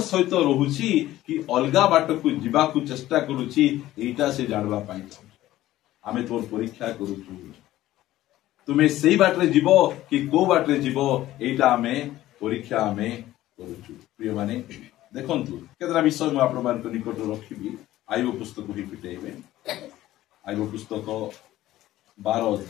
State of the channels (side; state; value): right; quieter; 14.9 dB